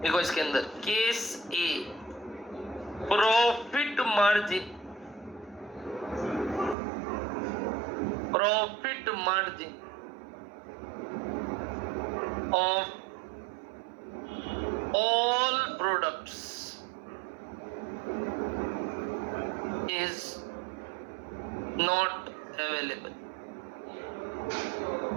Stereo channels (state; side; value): drops out; left; at 6.8 s